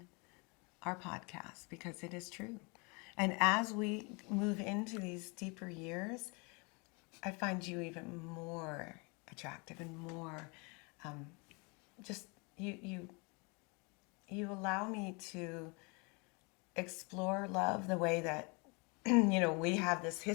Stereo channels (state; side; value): quieter; right; 30.8 dB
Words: our podcast because it is true. And as we move into these deeper years, I find you even more attractive and more just you allow me to explore love the way that we have this